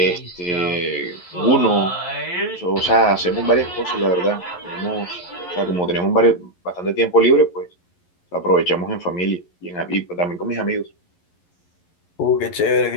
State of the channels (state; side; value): late; right; 11 ms